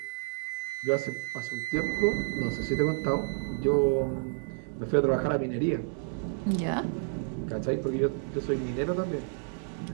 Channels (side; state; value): left; silent; 58 dB below the other